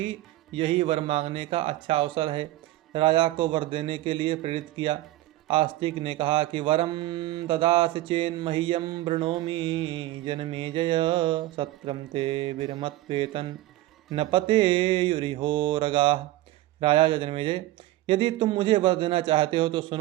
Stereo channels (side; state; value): left; quieter; 16.4 dB